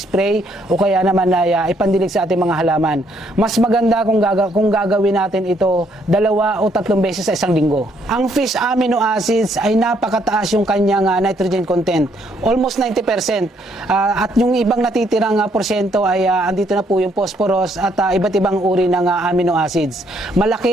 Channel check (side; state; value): both; normal; correlation 0.70